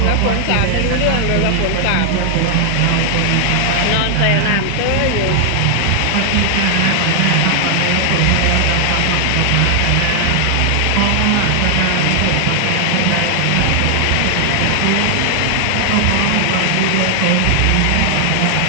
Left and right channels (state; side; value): different; both; correlation 0.00